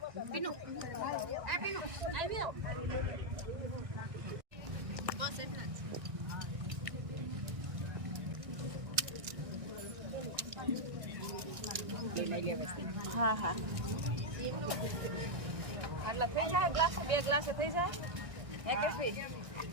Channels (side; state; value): left; late; 1.6 ms